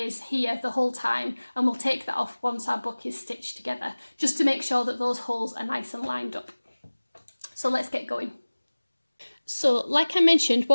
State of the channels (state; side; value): inverted; both; correlation -1.00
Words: here the whole time, and we'll take that off once our book is stitched together, just to make sure that those holes are nice and lined up. So let's get going. So like I mentioned,